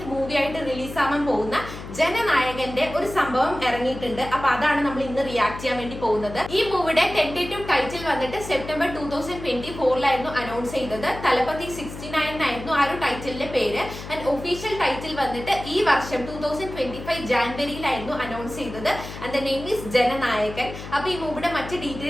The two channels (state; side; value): noise; left; hum, 11 dB below the sound